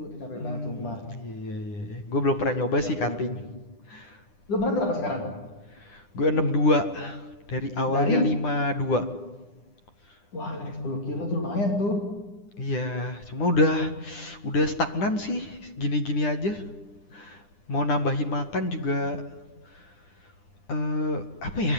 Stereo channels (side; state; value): right; late; 9.9 ms